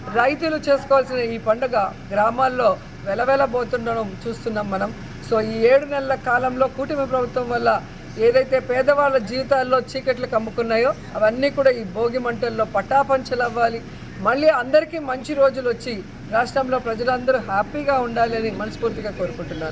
రైతులు చేసుకోవాల్సిన ఈ పండుగ గ్రామాల్లో వెలవెలబోతుండడం చూస్తున్నాం మనం. సో ఈ 7 నెలల కాలంలో కూటమి ప్రభుత్వం వల్ల ఏదైతే పేదవాళ్ళ జీవితాల్లో చీకట్లు కమ్ముకున్నాయో అవన్నీ కూడా ఈ భోగి మంటల్లో పటాపంచలు అవ్వాలి. మళ్ళీ అందరికీ మంచి రోజులు వచ్చి రాష్ట్రంలో ప్రజలందరూ హ్యాపీగా ఉండాలి అని మనస్ఫూర్తిగా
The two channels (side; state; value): both; identical; correlation 1.00